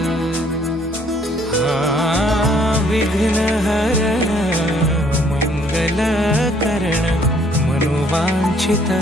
विघ्न हरण मंगल करण मनोवांछित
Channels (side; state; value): both; normal; correlation 0.63